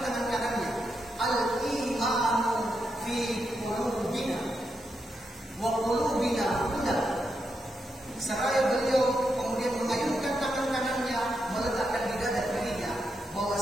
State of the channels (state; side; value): normal; both; correlation 0.84